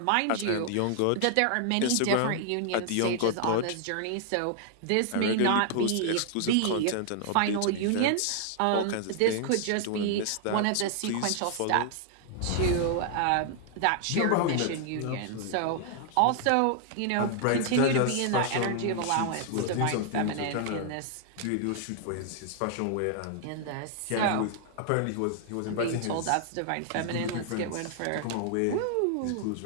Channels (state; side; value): different; both; correlation 0.00